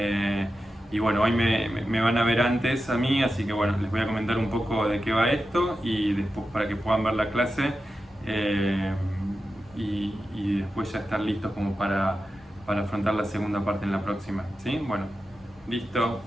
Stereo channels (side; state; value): both; normal; correlation 0.91